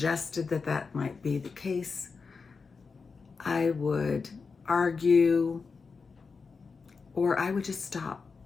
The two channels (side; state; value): right; quieter; 4.9 dB